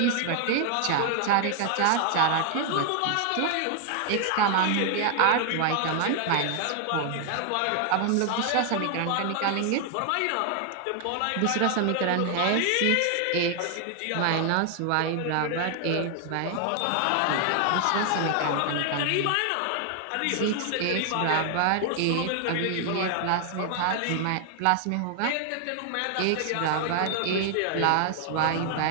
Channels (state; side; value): different; both; correlation 0.00